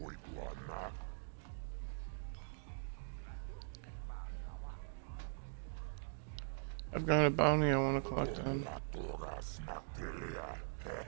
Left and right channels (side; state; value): left; silent; digital silence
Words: I've got a bounty I want to collect on.